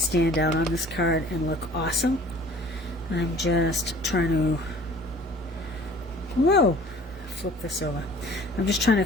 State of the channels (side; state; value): both; normal; correlation 0.50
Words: out on this card and look awesome. I'm just trying to, whoa, flip this over. I'm just trying to